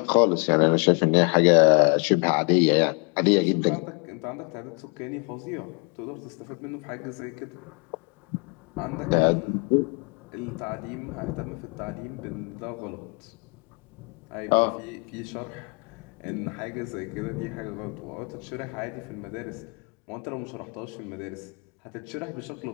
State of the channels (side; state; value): right; quieter; 35.2 dB